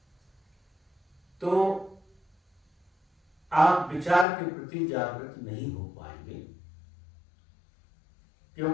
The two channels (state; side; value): drops out; right; at 4.2 s